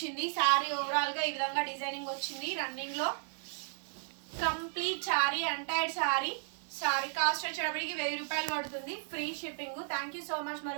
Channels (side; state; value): left; silent; digital silence